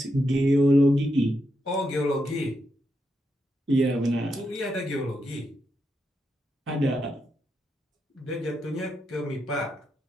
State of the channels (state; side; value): normal; both; correlation 0.84